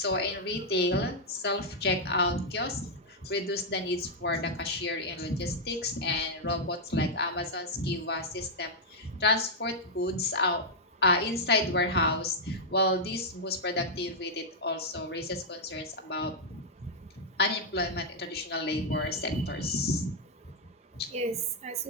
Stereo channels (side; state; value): both; normal; correlation -0.03